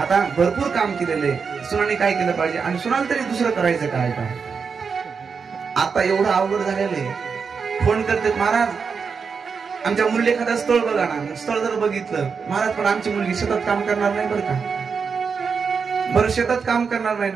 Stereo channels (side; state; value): left; quieter; 5.7 dB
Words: भरपूर काम केलेले, सुनाने काय केलं पाहिजे, आणि सुनाला तरी दुसरं करायचं काय. आता एवढं अवघड झालेलं आहे. फोन करते, महाराज आमच्या मुलीला एखादं स्थळ बघा ना. स्थळ जर बघितलं, महाराज पण आमची मुलगी शेतात काम करणार नाही बरं का, बरं शेतात काम करणार